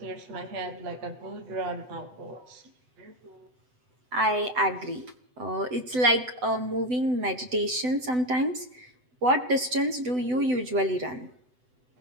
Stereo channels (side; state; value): left; late; 8.0 ms